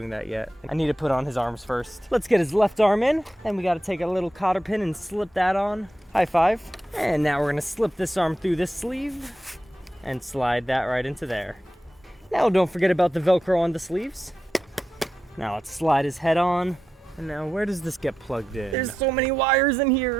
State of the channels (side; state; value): both; normal; correlation 0.89